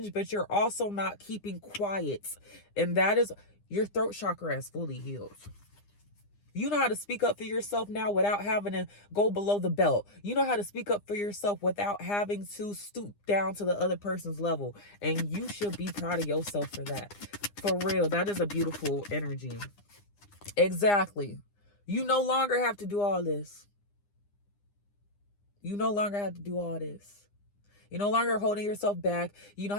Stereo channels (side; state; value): right; late; 9.8 ms